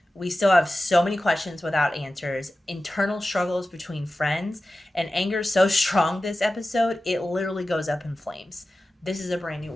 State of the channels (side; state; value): both; normal; correlation 0.94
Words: We still have so many questions without answers, internal struggles between friends, and anger so strong this episode, it literally goes up in flames. This is a brand new